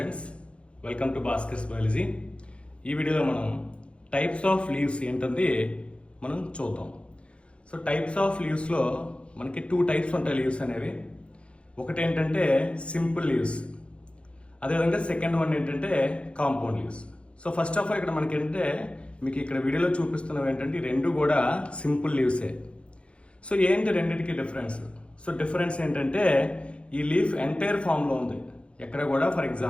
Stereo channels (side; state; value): right; late; 0.059 ms